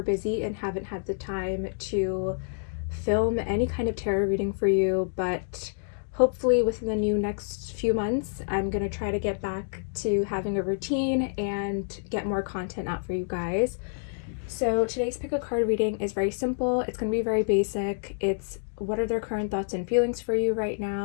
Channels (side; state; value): right; silent; digital silence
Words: busy and haven't had the time to film any kind of tarot reading for you, but hopefully within the next few months I'm going to try to get back to having a routine and get more content out for you guys. So today's pick a card reading is very simple. It's going to be very basic. It's what are their current thoughts and feelings for you right